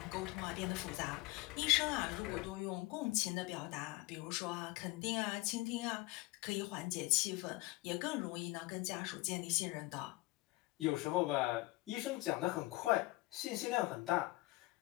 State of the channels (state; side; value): quieter; right; 21.0 dB